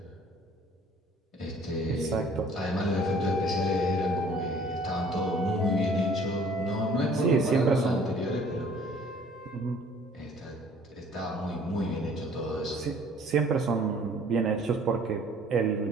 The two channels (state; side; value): normal; both; correlation 0.54